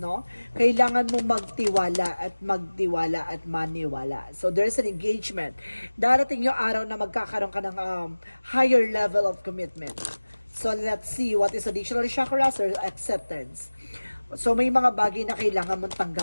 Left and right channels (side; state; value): both; inverted; correlation -1.00